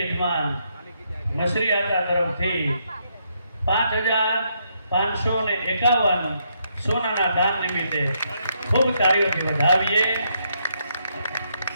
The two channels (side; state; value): both; inverted; correlation -0.76